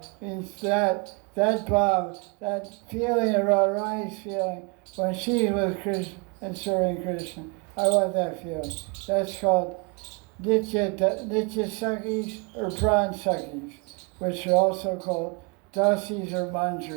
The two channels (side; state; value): left; quieter; 31.3 dB